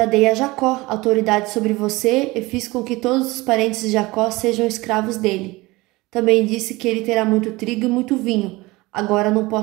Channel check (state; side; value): quieter; left; 21.5 dB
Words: dei a Jacó autoridade sobre você e fiz com que todos os parentes de Jacó sejam escravos dele. Também disse que ele terá muito trigo e muito vinho. Agora não